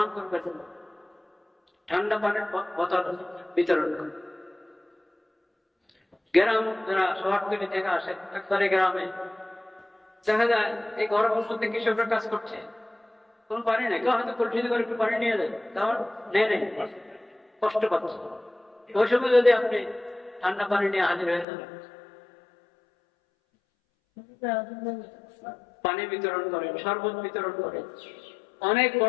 করবেন না। ঠান্ডা পানির বোতল বিতরণ করবেন। গ্রাম যারা শহরতলি থেকে আসে, একবারে গ্রামে দেখা যায় এই গরমের মধ্যে কৃষকরা কাজ করছে, কোন পানি নেই, কেউ হয়তো পরিচিত করে একটু পানি নিয়ে যায়, তার নেই কষ্ট পাচ্ছে। ওই সময় যদি আপনি ঠান্ডা পানি নিয়ে হাজির হয়ে যাবেন, পানি বিতরণ করেন, শরবত বিতরণ করেন, অনেক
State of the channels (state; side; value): drops out; right; at 21.5 s